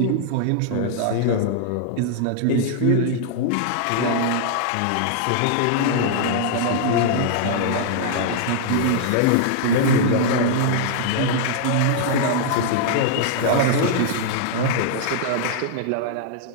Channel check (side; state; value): both; different; correlation -0.01